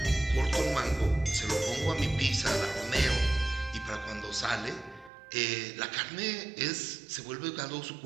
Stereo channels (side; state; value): left; drops out; at 5.1 s